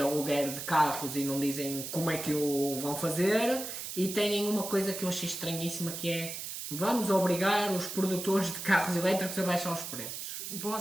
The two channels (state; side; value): noise; right; hiss, 7 dB below the sound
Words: de carros e não dizem como é que o vão fazer. E têm uma coisa que eu achei estranhíssima, que é: vamos obrigar os produtores de carros elétricos a baixar os preços. Boa